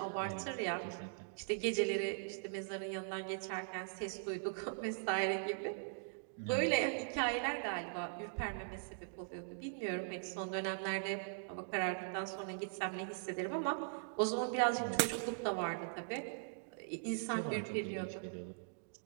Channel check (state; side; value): silent; left; digital silence